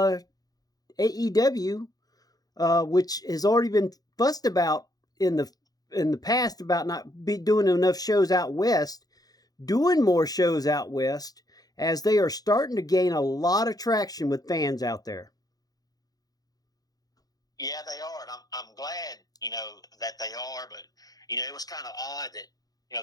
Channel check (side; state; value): right; late; 0.18 ms